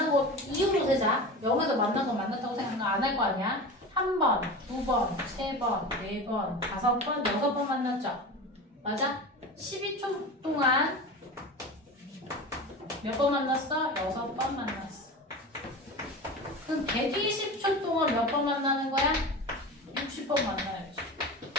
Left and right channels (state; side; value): normal; both; correlation 0.30